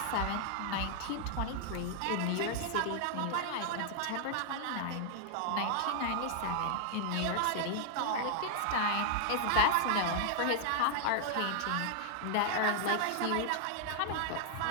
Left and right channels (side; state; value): both; different; correlation -0.01